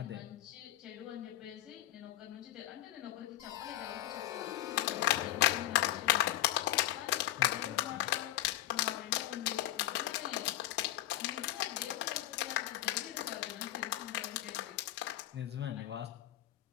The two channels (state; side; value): quieter; right; 15.1 dB